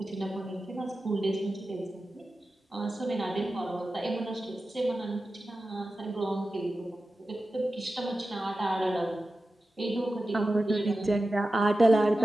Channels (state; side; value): normal; both; correlation 0.94